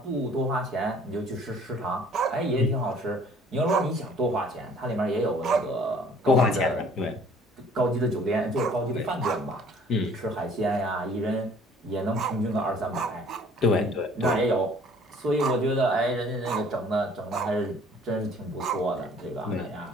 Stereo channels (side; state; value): both; normal; correlation 0.55